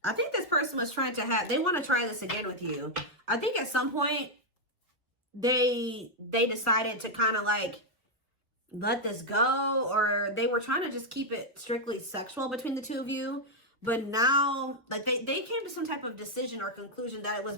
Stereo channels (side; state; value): both; normal; correlation -0.01